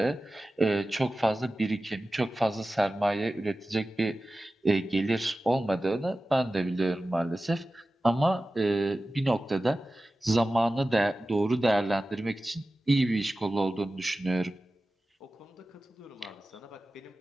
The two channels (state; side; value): normal; both; correlation 0.95